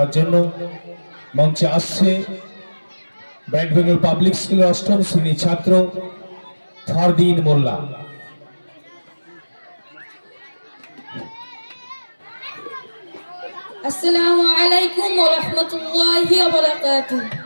জন্য। মঞ্চে আসছে ব্রাইটভেল পাবলিক স্কুলের অষ্টম শ্রেণীর ছাত্র ফারদিন মোল্লা। আসসালামু আলাইকুম ওয়া রাহমাতুল্লাহি ওয়া বারাকাতুহু।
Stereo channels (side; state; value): both; inverted; correlation -1.00